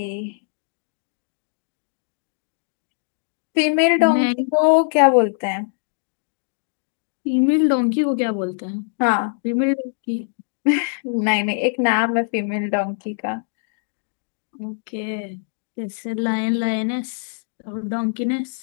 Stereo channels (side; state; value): right; silent; digital silence